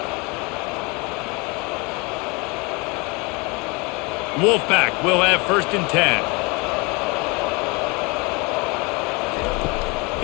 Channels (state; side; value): quieter; right; 28.0 dB